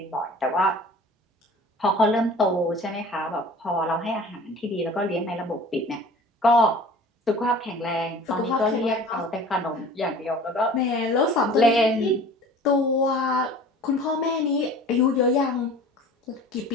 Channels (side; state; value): both; normal; correlation 0.44